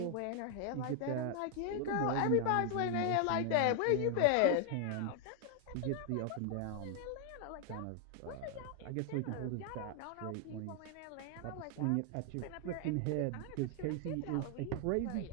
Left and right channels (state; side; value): different; both; correlation 0.00